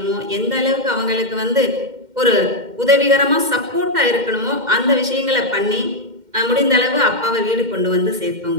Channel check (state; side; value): late; left; 2.1 ms